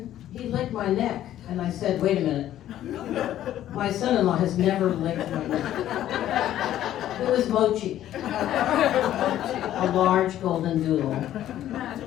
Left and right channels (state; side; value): quieter; right; 12.4 dB